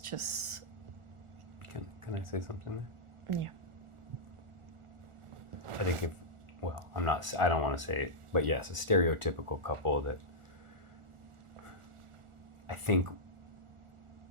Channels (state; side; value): late; left; 1.4 ms